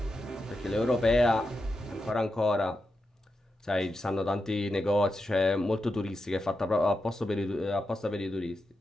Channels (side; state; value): both; normal; correlation 0.88